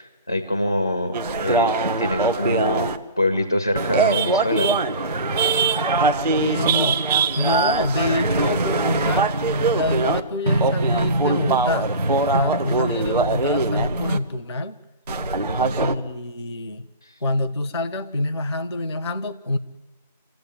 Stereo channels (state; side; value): inverted; both; correlation -0.35